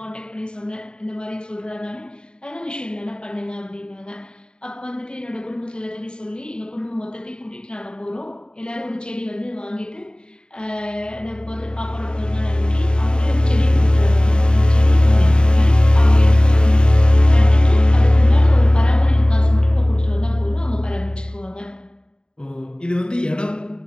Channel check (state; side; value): late; right; 0.049 ms